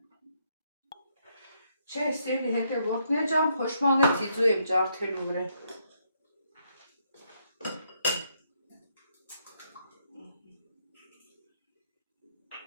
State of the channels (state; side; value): inverted; both; correlation -0.75